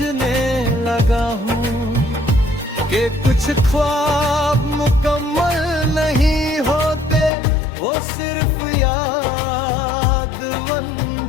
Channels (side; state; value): right; drops out; at 7.3 s